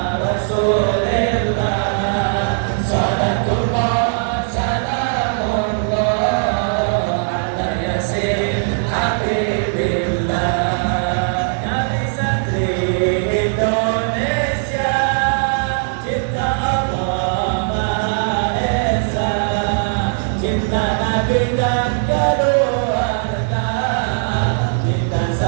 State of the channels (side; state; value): left; silent; digital silence